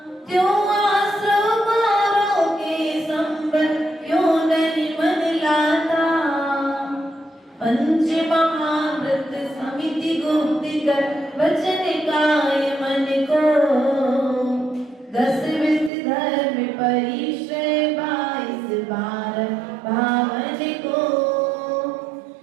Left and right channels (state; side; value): drops out; left; at 15.9 s